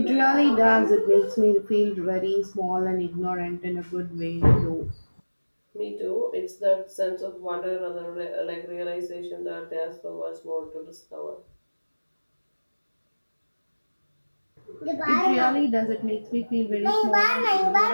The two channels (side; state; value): both; inverted; correlation -1.00